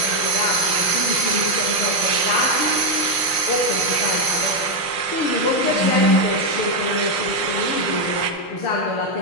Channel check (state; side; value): late; right; 6.3 ms